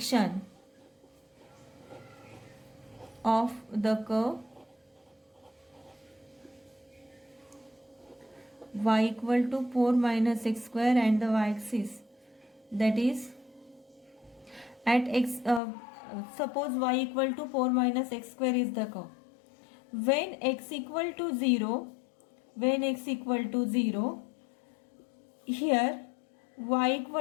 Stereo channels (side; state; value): right; drops out; at 15.6 s